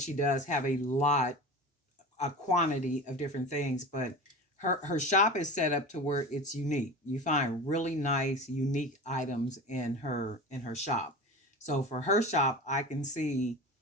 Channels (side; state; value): both; normal; correlation 0.31